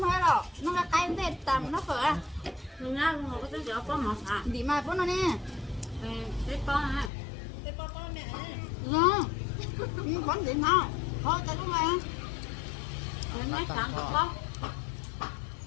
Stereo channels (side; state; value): right; drops out; at 7.1 s